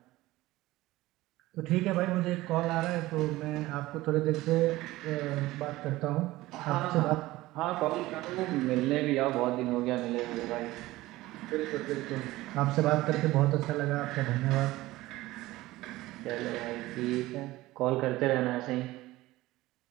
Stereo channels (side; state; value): left; quieter; 18.0 dB